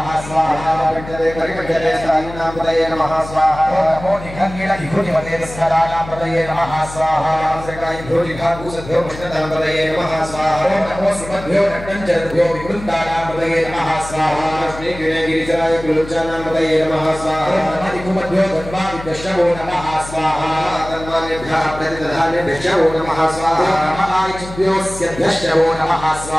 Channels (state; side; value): noise; left; hum, 13 dB below the sound